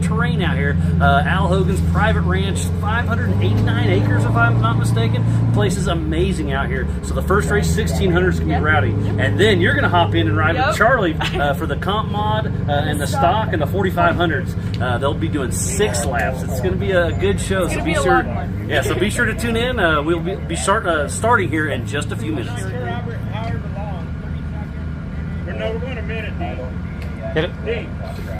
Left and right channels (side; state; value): both; identical; correlation 1.00